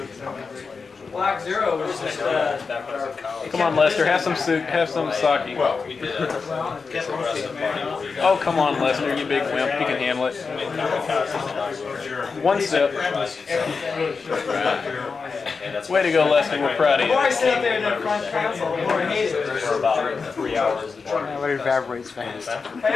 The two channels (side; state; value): right; quieter; 4.9 dB